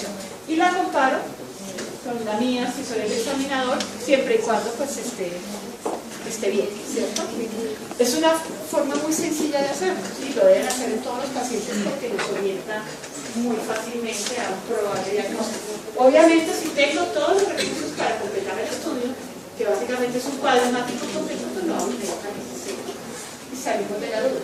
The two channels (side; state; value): both; identical; correlation 1.00